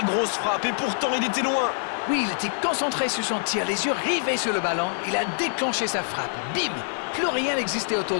grosse frappe. Et pourtant, il était loin. Oui, il était concentré sur son tir, les yeux rivés sur le ballon. Il a déclenché sa frappe. Bim! Plus rien n'existait autour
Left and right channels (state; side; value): silent; right; 62 dB below the other